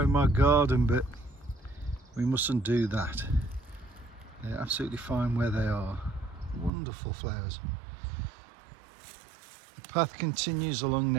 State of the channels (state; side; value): drops out; left; at 6.7 s